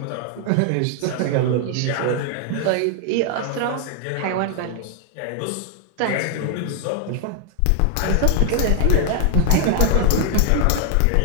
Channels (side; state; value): both; different; correlation 0.00